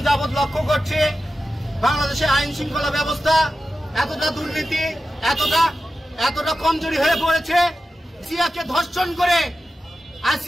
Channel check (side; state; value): both; normal; correlation 0.93